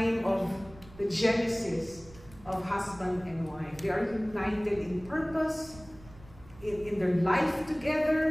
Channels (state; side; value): noise; right; rumble, 21 dB below the sound